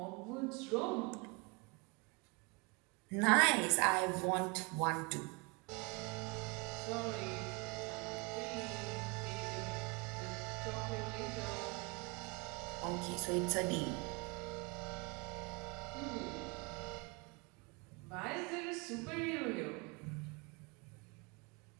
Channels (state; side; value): quieter; left; 29.7 dB